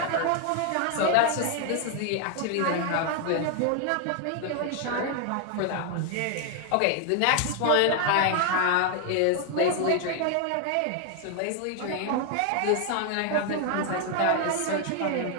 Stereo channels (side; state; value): both; different; correlation 0.00